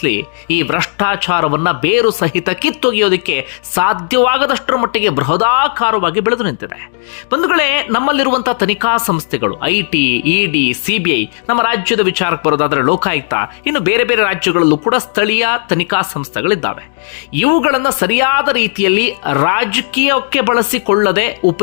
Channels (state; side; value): silent; right; digital silence